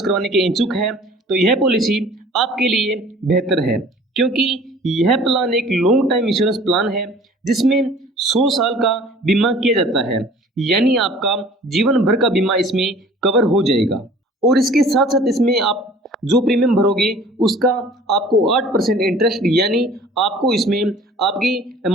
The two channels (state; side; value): normal; both; correlation 0.48